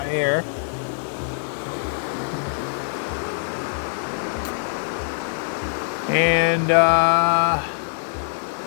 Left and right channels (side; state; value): right; silent; 58 dB below the other